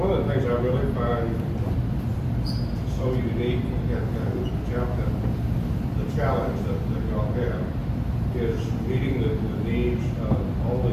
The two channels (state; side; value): identical; both; correlation 1.00